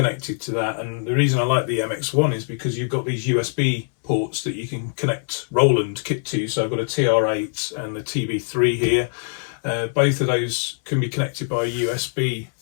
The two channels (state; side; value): silent; right; digital silence